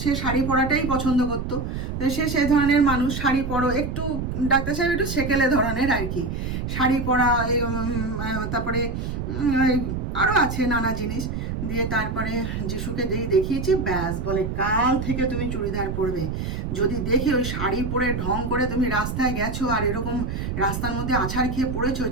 সে শাড়ি পরাটাই পছন্দ করতো, সে সেই ধরনের মানুষ, শাড়ি পরো একটু, ডাক্তার সাহেব একটু সেকেলে ধরনের আর কি, শাড়ি পরা, তারপরে আরও আছে নানা জিনিস। দিয়ে তারপরে যিশুকে যেই দেখিয়েছি, ব্যাস বলে কাল থেকে তুমি চুড়িদার পরবে। যদি দেখে ওই শাড়ি পরে ঢং করে তুমি রাস্তায় গেছো আর এরকম রাস্তার মধ্যে আছাড় খেয়ে পড়েছো,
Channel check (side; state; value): right; noise; rumble, 4 dB below the sound